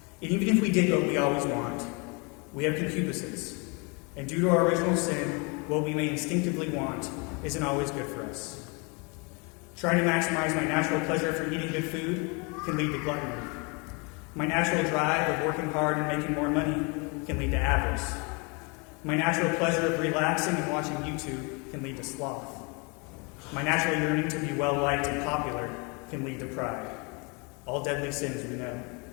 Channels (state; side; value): quieter; right; 31.4 dB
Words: And even if we did what we always want, we have concupiscence. And due to our original sin, what we may instinctively want isn't always good for us. Trying to maximize my natural pleasure for eating good food can lead to gluttony. My natural drive of working hard and making more money can lead to avarice. My natural pleasure of relaxing and watching YouTube can lead to sloth. My natural yearning to be well-liked and popular can lead to pride. All deadly sins we know.